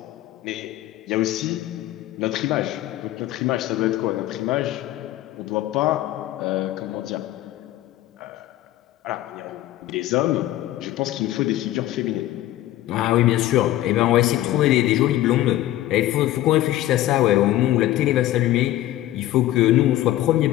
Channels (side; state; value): right; quieter; 14.5 dB